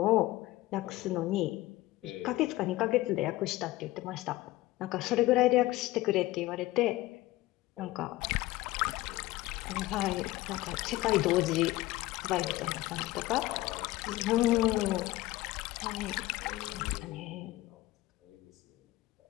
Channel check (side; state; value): right; quieter; 17.8 dB